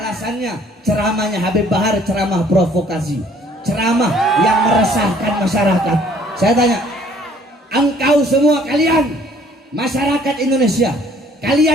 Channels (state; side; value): normal; both; correlation 0.59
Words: ceramahnya Habib Bahar, ceramah provokasi, ceramah yang meresahkan masyarakat. Saya tanya, engkau semua kalian masyarakat Indonesia,